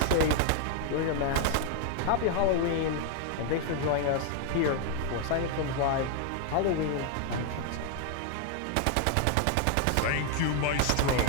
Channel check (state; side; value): different; both; correlation 0.01